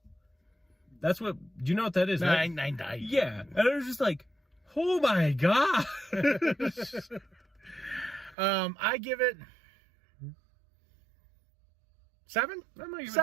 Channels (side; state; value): left; drops out; at 8.3 s